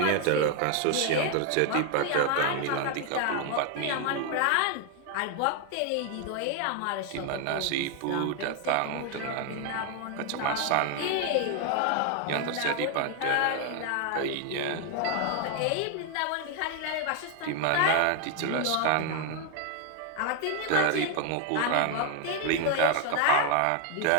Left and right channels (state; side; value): different; both; correlation 0.00